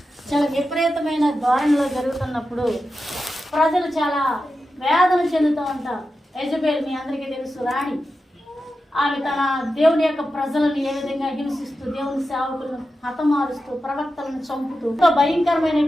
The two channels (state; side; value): normal; both; correlation 0.91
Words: చాలా విపరీతమైన ధోరణిలో జరుగుతున్నప్పుడు ప్రజలు చాలా వేదన చెందుతూ ఉంటారు. యెజెబెల్ మీ అందరికీ తెలుసు, రాణి. ఆమె తన దేవుని యొక్క ప్రజలను ఏ విధంగా హింసిస్తూ, దేవుని సేవకులను హతమారుస్తూ, ప్రవక్తలను చంపుతూ